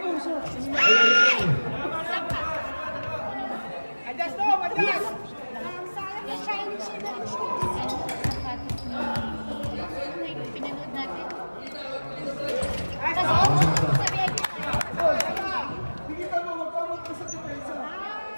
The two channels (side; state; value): both; inverted; correlation -1.00